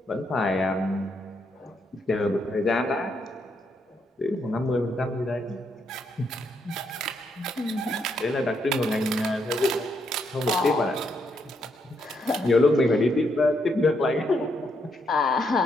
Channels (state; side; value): normal; both; correlation 0.77